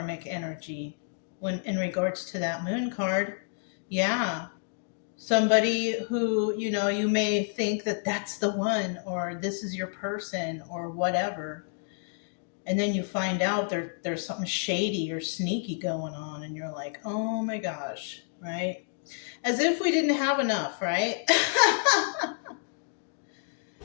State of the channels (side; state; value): right; silent; digital silence